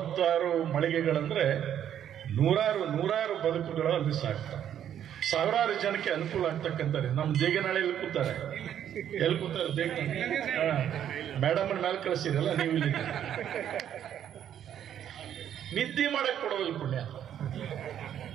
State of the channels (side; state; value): left; quieter; 10.0 dB